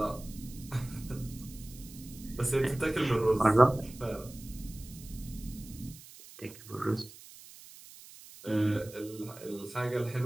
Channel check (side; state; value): right; noise; hiss, 18 dB below the sound